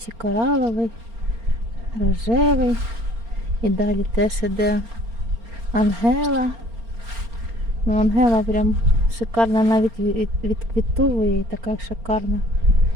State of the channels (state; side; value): late; left; 4.3 ms